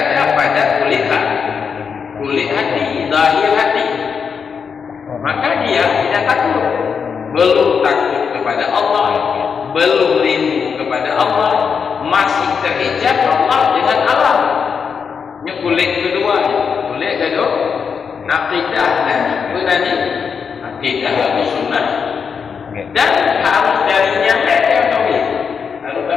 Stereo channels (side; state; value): right; quieter; 6.3 dB